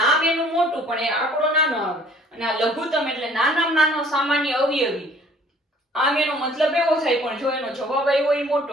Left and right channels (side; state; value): both; normal; correlation 0.55